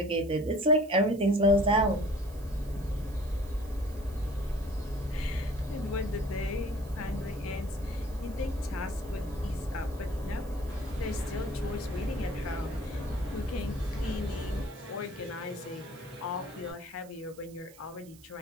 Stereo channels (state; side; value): noise; right; hiss, 23 dB below the sound